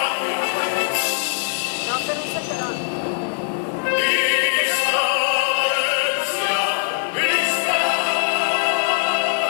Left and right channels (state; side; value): silent; right; 56 dB below the other